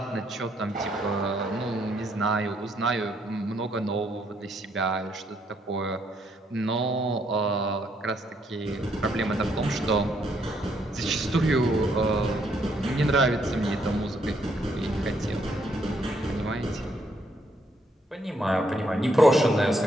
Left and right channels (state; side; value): normal; both; correlation 0.72